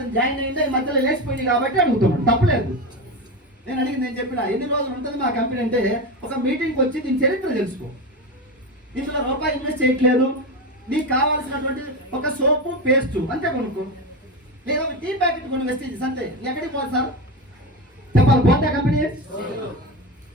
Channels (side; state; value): both; normal; correlation 0.19